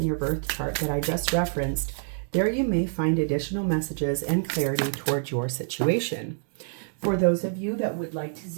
your birth chart that I just referenced. There you may find additional messages and clarity towards your situation. For those of you that would like to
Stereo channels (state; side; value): silent; left; digital silence